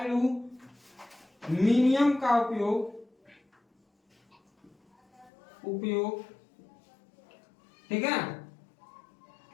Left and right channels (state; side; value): drops out; right; at 5.3 s